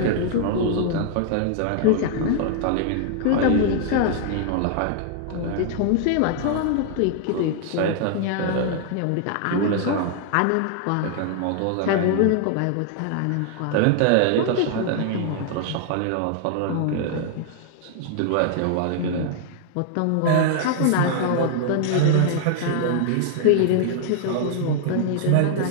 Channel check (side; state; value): both; different; correlation 0.00